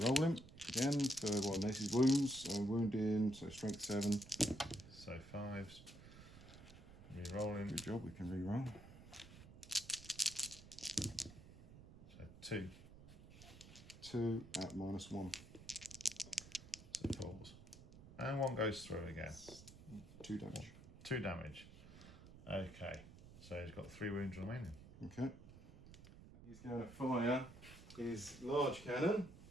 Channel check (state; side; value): noise; right; rumble, 17 dB below the sound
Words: him again for Nace's wounds. So wounding, so strength 7. So 5s. Rerolling. Good job, we can reroll. So 2. 2 at minus 1. So it falls. And 1 goes through again. 2 damage. 2 damage. Okay. So he's got 3 wounds remaining. Okay. He's going to fire his large cannon